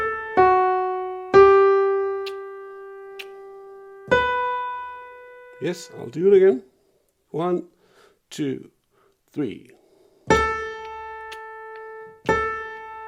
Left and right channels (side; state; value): both; identical; correlation 1.00